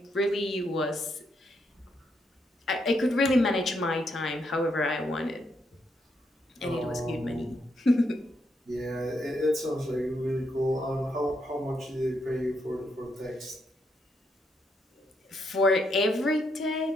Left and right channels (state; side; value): normal; both; correlation 0.78